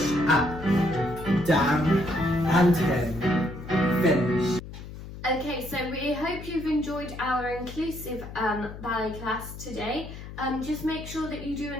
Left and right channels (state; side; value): noise; left; hum, 12 dB below the sound